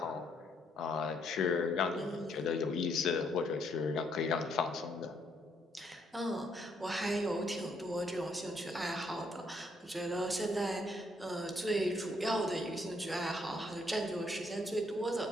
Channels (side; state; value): both; normal; correlation 0.71